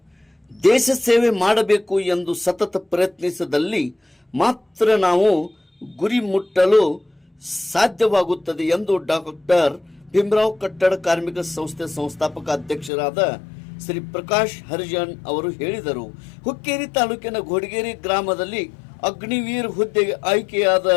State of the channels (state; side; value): drops out; right; at 12.9 s